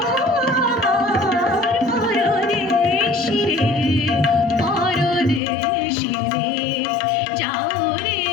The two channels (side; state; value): right; drops out; at 5.4 s